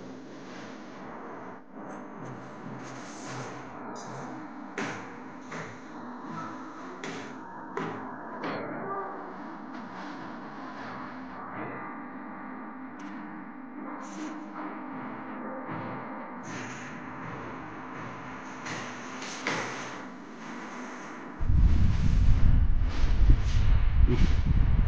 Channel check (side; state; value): both; identical; correlation 1.00